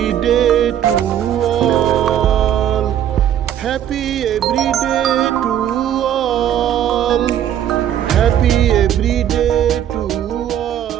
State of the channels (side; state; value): left; quieter; 10.5 dB